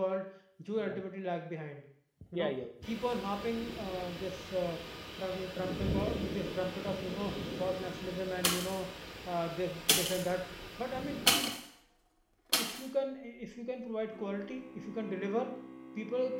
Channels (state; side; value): identical; both; correlation 1.00